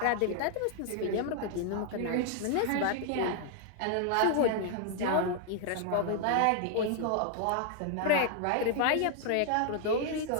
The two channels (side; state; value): both; different; correlation 0.00